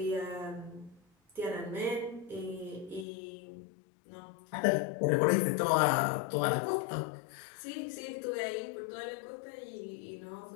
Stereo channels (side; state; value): right; drops out; at 3.1 s